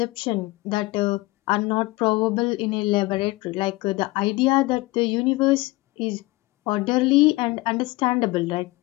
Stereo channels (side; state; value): right; quieter; 21.4 dB